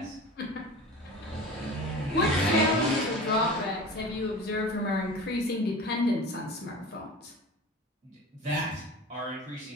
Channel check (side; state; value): both; normal; correlation 0.35